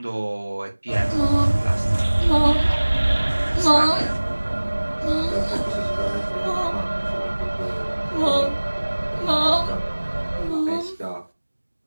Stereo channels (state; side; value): inverted; both; correlation -1.00